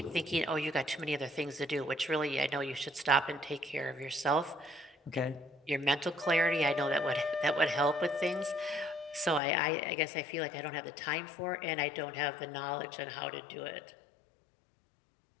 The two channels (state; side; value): drops out; right; at 9.4 s